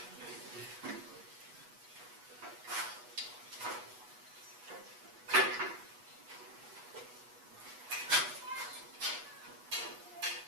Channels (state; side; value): late; left; 8.2 ms